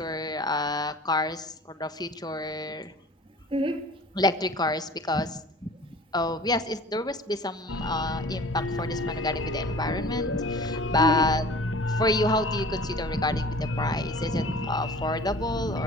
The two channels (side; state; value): both; normal; correlation 0.45